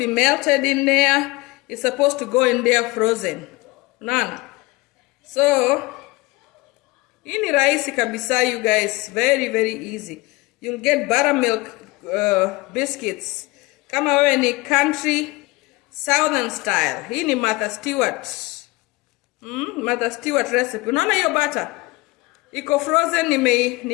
melted in there. It's supposed to go in there frozen. No. So, hii ni rahisi kabisa, you guys. Very, very easy. You'll get buttermilk biscuits. Kama wewe ni country, southern style. Hii ni Martha Stewart. Mother Stewart recipe. Unaona hiyo butter? Iko frozen,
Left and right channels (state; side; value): quieter; right; 22.2 dB